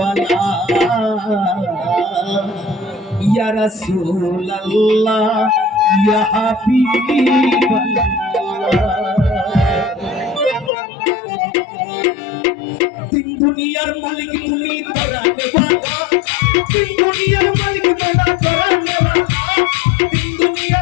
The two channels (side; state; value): right; drops out; at 10.7 s